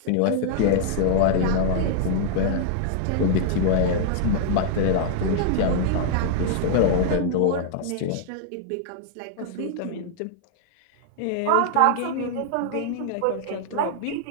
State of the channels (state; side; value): different; both; correlation -0.01